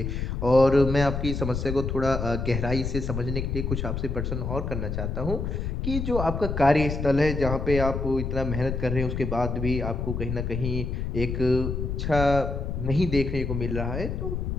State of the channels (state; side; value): noise; left; rumble, 3 dB below the sound